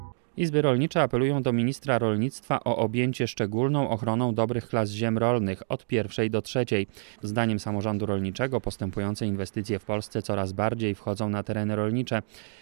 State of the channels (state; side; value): silent; left; digital silence